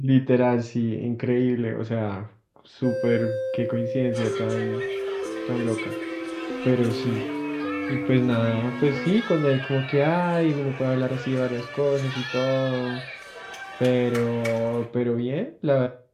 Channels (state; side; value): identical; both; correlation 1.00